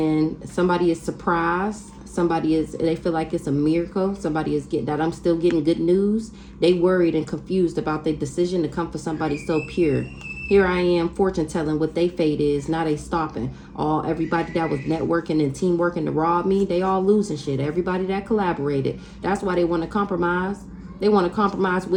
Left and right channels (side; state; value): both; identical; correlation 1.00